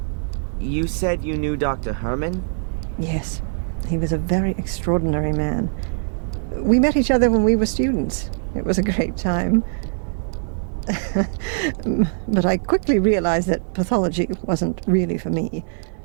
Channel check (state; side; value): silent; left; digital silence